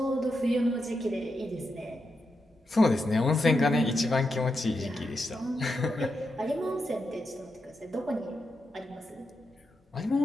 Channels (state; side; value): normal; both; correlation 0.86